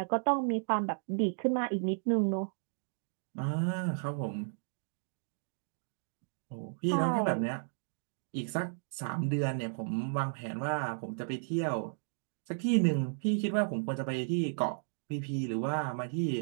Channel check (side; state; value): left; silent; digital silence